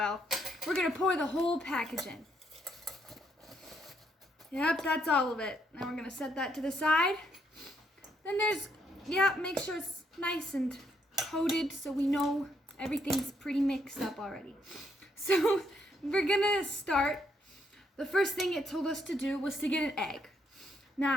We're gonna pour the whole package in. Yep, that's all of it. Now we're gonna set that to the side. Then there's, yeah, make sure it's nice and coated so we know everything's pretty mixed up already. So we're gonna start. The first thing it told us to do was to get an egg.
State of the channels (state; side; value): normal; both; correlation 0.74